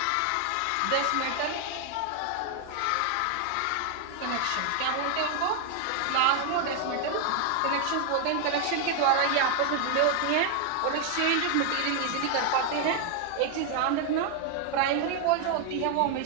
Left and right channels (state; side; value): different; both; correlation 0.00